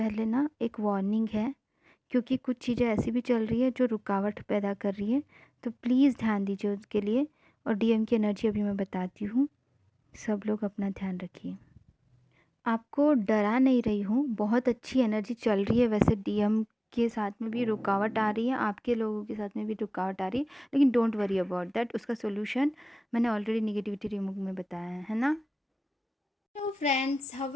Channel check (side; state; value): both; normal; correlation 0.98